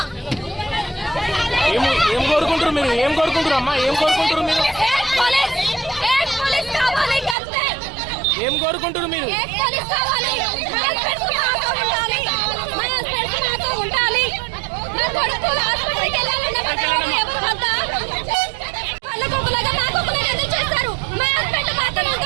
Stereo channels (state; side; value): drops out; left; at 7.4 s